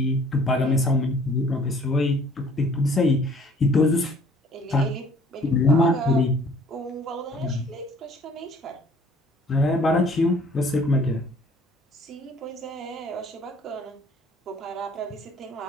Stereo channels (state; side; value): normal; both; correlation 0.55